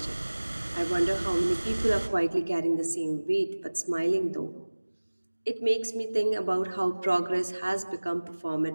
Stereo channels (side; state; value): both; inverted; correlation -1.00